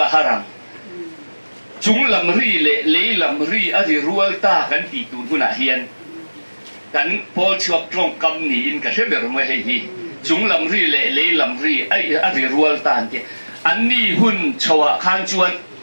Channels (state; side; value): inverted; both; correlation -1.00